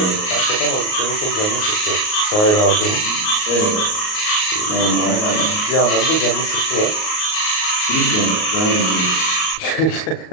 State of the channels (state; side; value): late; right; 38 ms